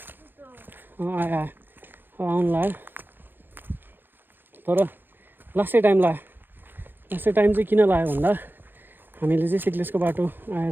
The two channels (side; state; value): left; late; 0.095 ms